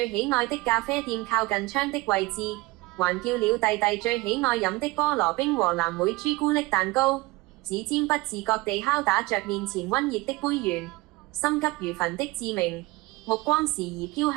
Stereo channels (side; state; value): left; quieter; 21.3 dB